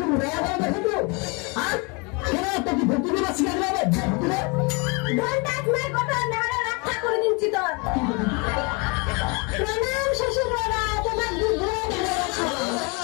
রেয়া করে দেখো আর কেন তো কি ভর্তি দিবা শিখে যাবে ঘন্টা তোমার কথা নাড়া রক্ষা করে দিচ্ছি তোর প্রণাম শ্বশুর বাবা তোমার দুধ ধরে রাখো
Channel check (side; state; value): right; quieter; 29.5 dB